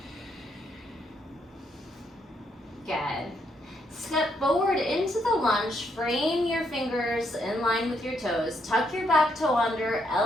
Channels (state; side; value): normal; both; correlation 0.75